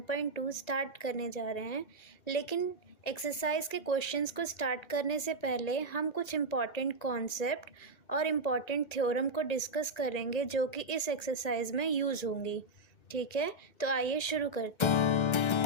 स्टार्ट करने जा रहे हैं। लेकिन एक्सरसाइज के क्वेश्चंस को स्टार्ट करने से पहले हम कुछ इम्पॉर्टेंट कॉन्सेप्ट और इम्पॉर्टेंट थ्योरम को डिस्कस करेंगे जो कि इस एक्सरसाइज में यूज़ होंगी। ठीक है, तो आइए शुरू करते हैं।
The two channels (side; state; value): right; late; 1.9 ms